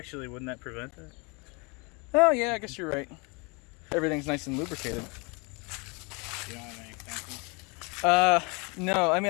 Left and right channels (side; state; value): right; quieter; 30.4 dB